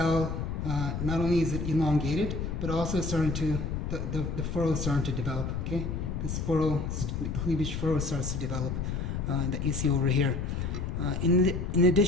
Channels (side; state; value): left; noise; rumble, 3 dB below the sound